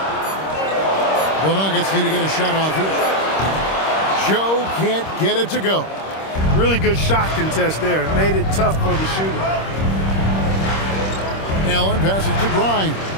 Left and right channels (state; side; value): late; right; 26 ms